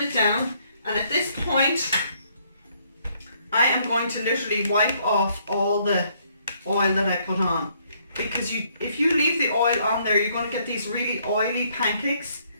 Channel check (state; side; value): inverted; both; correlation -0.68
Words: it down, and at this point I am going to literally wipe off all the oil that I put on, because if you leave the oil on there, you're going to get these really oily pancakes,